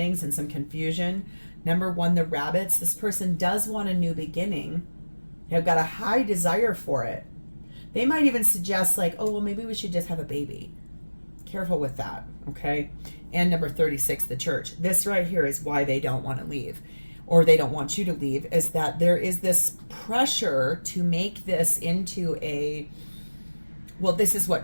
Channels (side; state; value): both; inverted; correlation -1.00